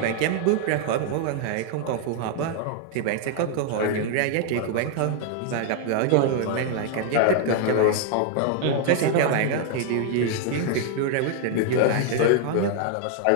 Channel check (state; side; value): different; both; correlation 0.00